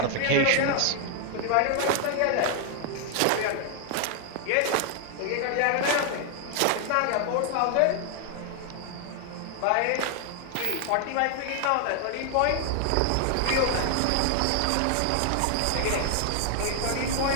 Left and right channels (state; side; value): different; both; correlation 0.00